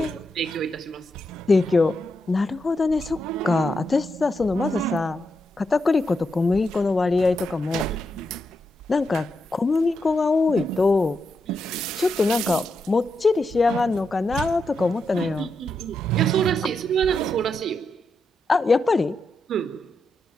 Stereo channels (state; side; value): normal; both; correlation 0.85